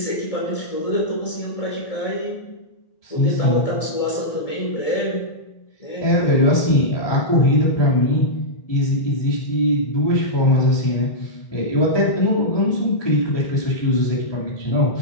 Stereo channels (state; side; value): late; right; 1.7 ms